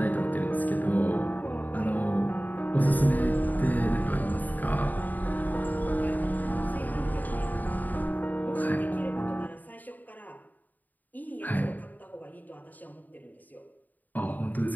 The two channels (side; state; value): right; late; 0.083 ms